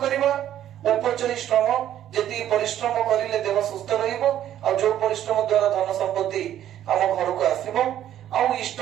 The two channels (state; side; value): quieter; left; 11.5 dB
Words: କରିବା, ଉପଚୟୀ ଶ୍ରମ, ଯେତିକି ପରିଶ୍ରମ କରିଲେ ଦେହ ସୁସ୍ଥ ରହିବ, ଆଉ ଯୋଉ ପରିଶ୍ରମ ଦ୍ଵାରା ଧନ ସମ୍ପତ୍ତି ଆମ ଘରକୁ ଆସିବ, ଆଉ ଇଷ୍ଟ